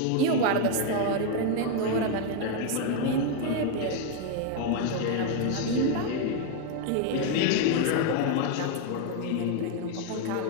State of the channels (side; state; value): both; different; correlation 0.01